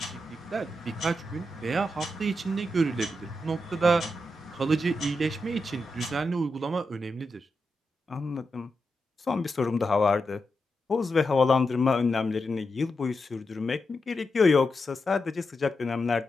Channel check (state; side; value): normal; both; correlation 0.87